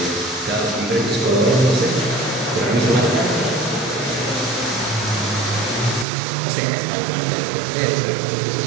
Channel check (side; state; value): left; drops out; at 6.1 s